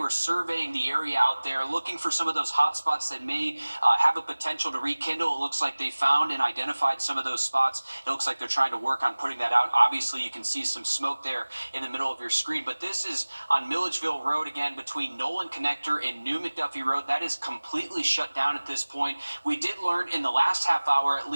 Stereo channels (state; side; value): inverted; both; correlation -1.00